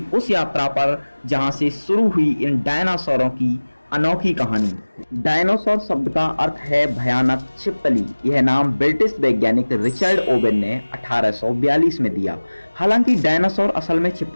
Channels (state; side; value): inverted; both; correlation -1.00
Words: उस यात्रा पर जहां से शुरू हुई इन डायनासोरों की अनोखी कहानी। डायनासोर शब्द का अर्थ है भयानक छिपकली। यह नाम ब्रिटिश वैज्ञानिक रिचर्ड ओवेन ने 1842 में दिया। हालांकि डायनासोर असल में